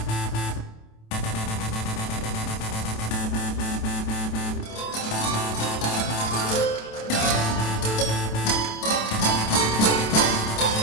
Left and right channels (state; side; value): late; right; 27 ms